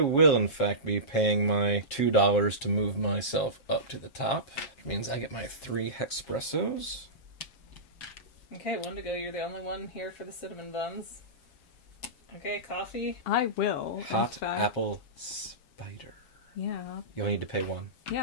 in fact be paying my $2 to move myself up to the top. Which means I get my 3 Hexpressos. Okay, 1 to go. You're the only one here for the cinnamon buns. Okay, coffee. I will. in Hot fact. apple spider. Yeah. You only need to pay 1.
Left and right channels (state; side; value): late; right; 7.3 ms